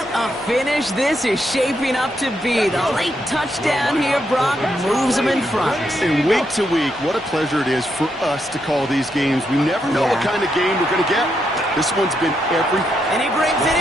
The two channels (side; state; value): both; normal; correlation 0.80